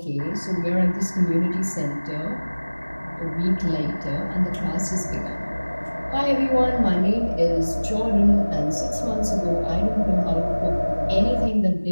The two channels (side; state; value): both; inverted; correlation -1.00